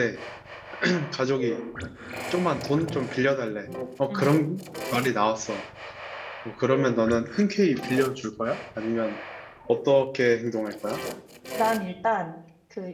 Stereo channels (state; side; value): identical; both; correlation 1.00